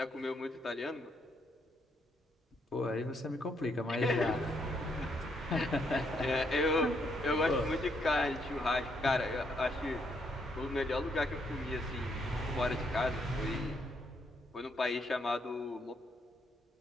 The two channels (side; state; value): both; normal; correlation 0.74